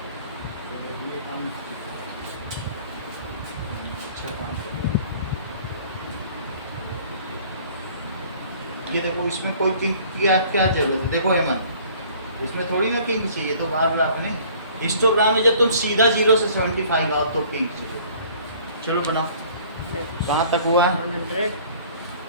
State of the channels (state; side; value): inverted; both; correlation -0.52